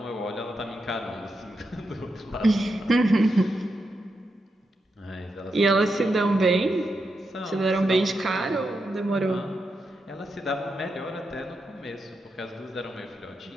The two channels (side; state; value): both; normal; correlation 0.85